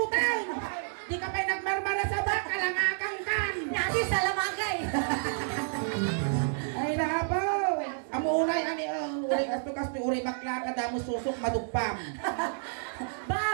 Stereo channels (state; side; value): silent; left; digital silence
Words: Di ka pa nagmarmara sa baka, langakang kan! Nati sa lamagay. Ay napaw! Amuray kami, uray kasto uray bakla ka damo susok madugpam.